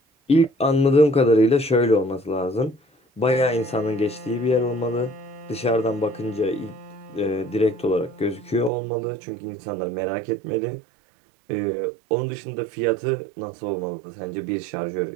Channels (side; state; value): left; drops out; at 8.7 s